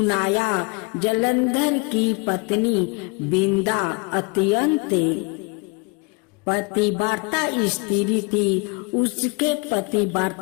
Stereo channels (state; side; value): quieter; right; 29.5 dB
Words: जलंधर की पत्नी वृंदा अत्यंत पतिव्रता स्त्री थी। उसके